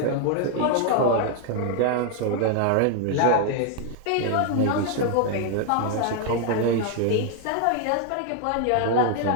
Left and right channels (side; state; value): both; different; correlation 0.00